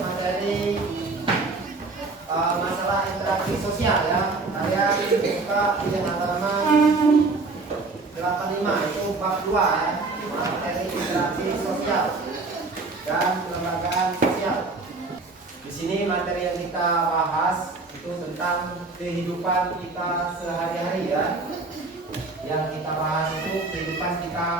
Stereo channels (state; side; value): quieter; left; 3.7 dB